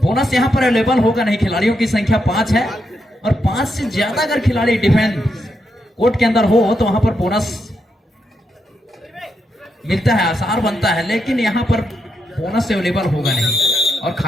यहां पर अवेलेबल होगा नहीं, खिलाड़ियों की संख्या 5 है और 5 से ज्यादा अगर खिलाड़ी डिफेंस कोर्ट के अंदर हो तो वहां पर बोनस मिलता है, आसार बनता है, लेकिन यहां पर बोनस अवेलेबल होगा नहीं। और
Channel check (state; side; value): normal; both; correlation 0.82